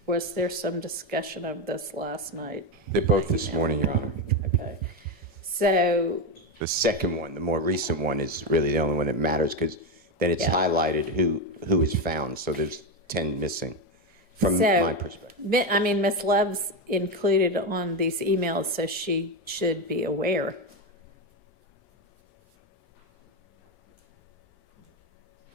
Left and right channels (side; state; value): both; normal; correlation 0.11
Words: was there some discussion of this last night? They're both this morning, Your Honor. Okay. So the second one, the more recent one, is really the only one that matters, because then it's highlighted who is found. So there's 10 missing from my perspective. I mean, Ms. Love's included on these emails, so she should be aware.